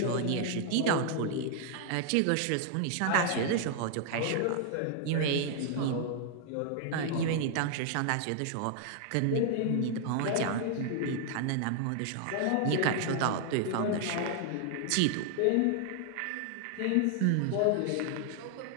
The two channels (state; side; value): different; both; correlation 0.00